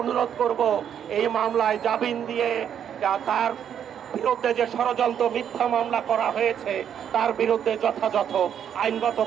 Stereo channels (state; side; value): quieter; left; 8.9 dB